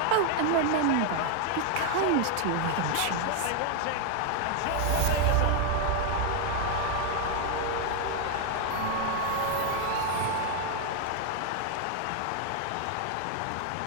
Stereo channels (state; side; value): different; both; correlation 0.01